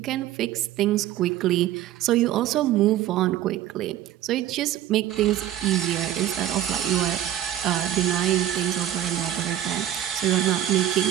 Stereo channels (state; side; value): quieter; left; 12.2 dB